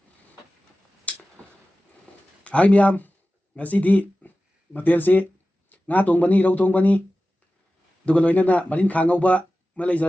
हाय मियाम, ngasi di ꯃꯊꯦꯜꯁꯤ ꯉꯥ ꯊꯣꯡꯕꯅꯤ, ꯔꯧ ꯊꯣꯡꯕꯅꯤ, ꯑꯗꯨꯒ ꯂꯣꯏꯅꯅ ꯃꯔꯤꯟꯈꯥ ꯉꯧꯕ ꯑꯃ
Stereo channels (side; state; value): both; normal; correlation 0.95